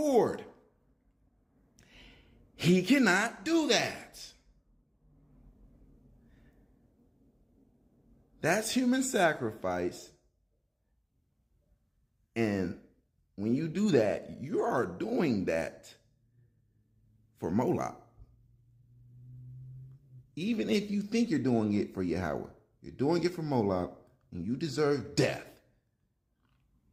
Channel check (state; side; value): identical; both; correlation 1.00